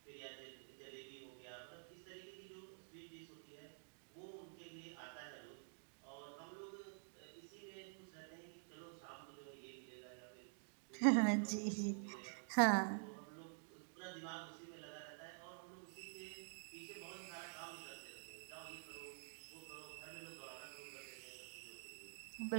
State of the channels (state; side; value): silent; left; digital silence